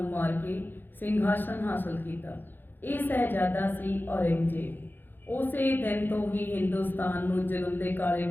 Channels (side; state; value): right; late; 0.093 ms